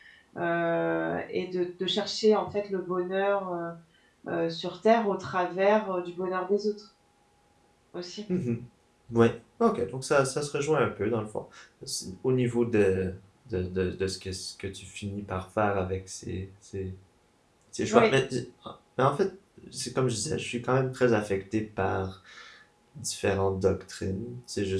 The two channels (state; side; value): identical; both; correlation 1.00